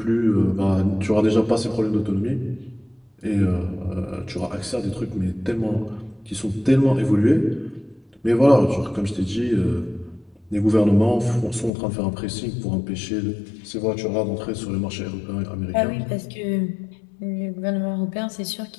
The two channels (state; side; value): drops out; right; at 11.7 s